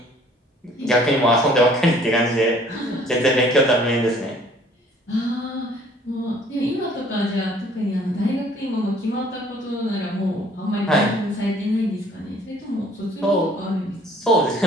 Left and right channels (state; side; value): normal; both; correlation 0.56